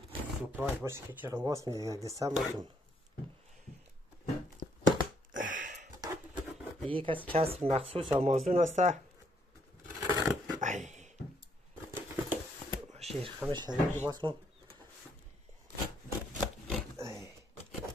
سپرایز باشه که چرا واس میده یک دستم باتون یک از کسب مخصوص آمازون هسته ای شیر خمش شدید باز کنم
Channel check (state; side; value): normal; both; correlation 0.72